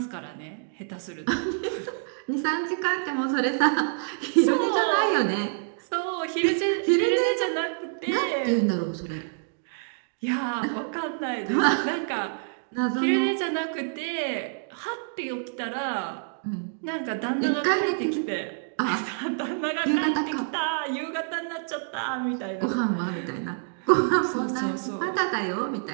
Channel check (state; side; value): silent; left; digital silence